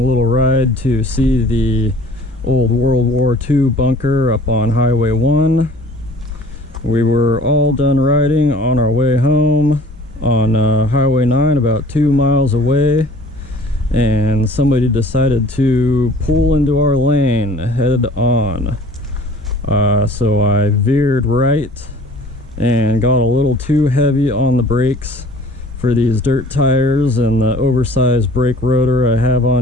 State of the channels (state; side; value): normal; both; correlation 0.50